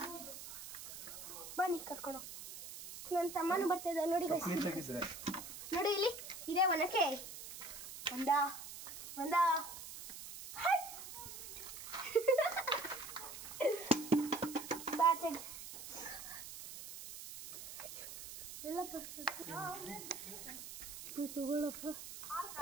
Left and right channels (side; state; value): right; noise; hiss, 11 dB below the sound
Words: ಬನ್ನಿ ಕರ್ಕೊಂಡು ಹೋಗ್ತೀನಿ. ನನ್ನ ತಮ್ಮನೂ ಬರ್ತಾ ಇದ್ದ ನೋಡಿ ಗೈಸ್. ನೋಡಿ ಇಲ್ಲಿ ಇದೆ ಒನಕೆ. ಒಂದ ಬಾಚೆಗೆ ಎಲ್ಲಪ್ಪ ತಗೊಳ್ಳಪ್ಪ.